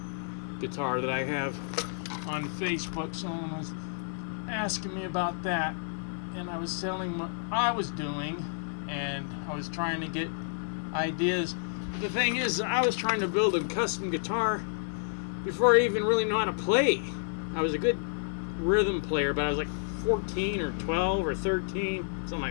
guitar that I have on Facebook. Someone was asking me about that, and I was telling what I was doing, and I was trying to get ideas. But the thing is, I was trying to build a custom guitar before I even really know how to play. I was a good rhythm player, but I was like 14 or 12 or 13, something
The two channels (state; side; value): silent; right; digital silence